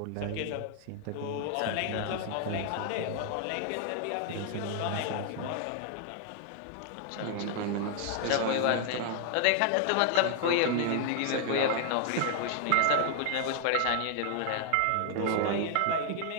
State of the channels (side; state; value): both; different; correlation 0.00